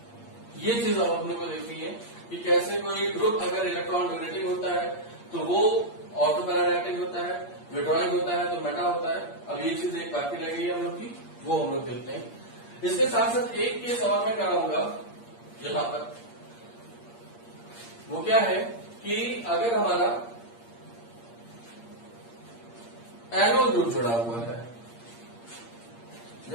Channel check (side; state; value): right; late; 8.6 ms